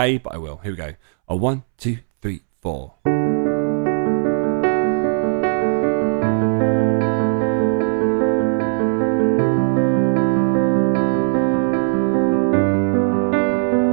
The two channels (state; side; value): silent; left; 67 dB below the other